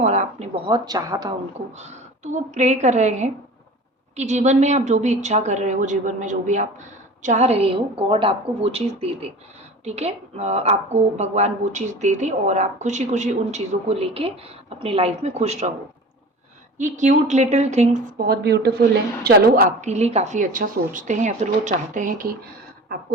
आपने बहुत चाहा था उनको। तो वो प्रे कर रहे हैं कि जीवन में आप जो भी इच्छा कर रहे हो, जीवन में जो भी आप चाह रहे हो, गॉड आपको वो चीज़ दे दे। ठीक है, आपको भगवान वो चीज़ दे दे और आप खुशी खुशी उन चीज़ों को लेके अपनी लाइफ में खुश रहो। ये क्यूट लिटिल थिंग्स बहुत ब्यूटीफुल हैं। चलो, आपके लिए काफ़ी अच्छा सोचते हैं या फिर वो चाहते हैं कि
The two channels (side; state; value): both; normal; correlation 0.38